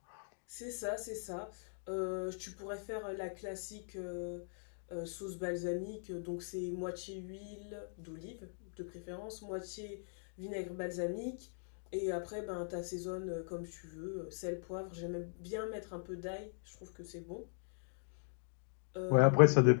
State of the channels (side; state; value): right; silent; digital silence